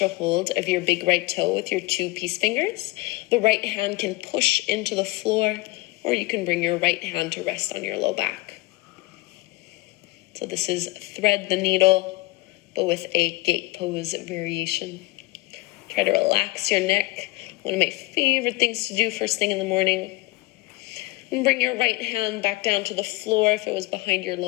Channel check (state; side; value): quieter; right; 20.5 dB